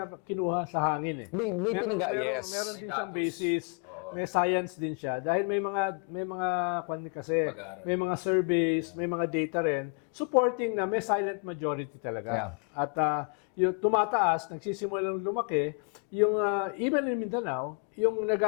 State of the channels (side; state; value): right; quieter; 38.8 dB